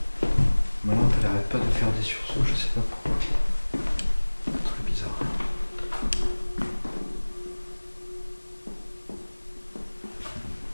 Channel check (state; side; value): inverted; both; correlation -1.00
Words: Ma lampe elle arrête pas de faire des sursauts, je sais pas pourquoi. Très bizarre.